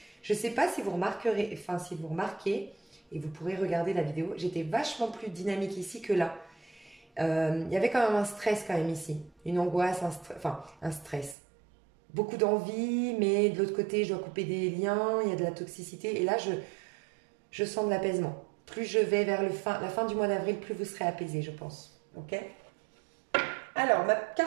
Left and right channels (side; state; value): left; drops out; at 11.4 s